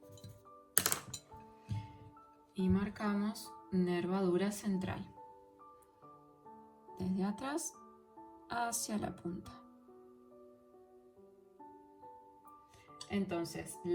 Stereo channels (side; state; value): both; identical; correlation 1.00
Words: Y marcamos nervadura central. Desde atrás hacia la punta. Entonces,